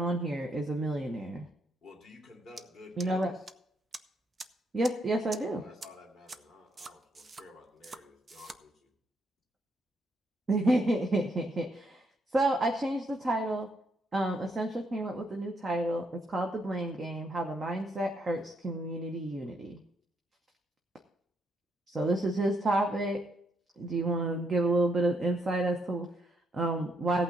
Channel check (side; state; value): both; normal; correlation 0.75